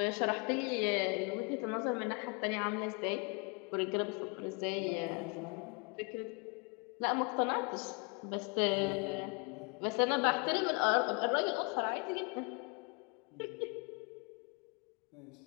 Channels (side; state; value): right; quieter; 32.5 dB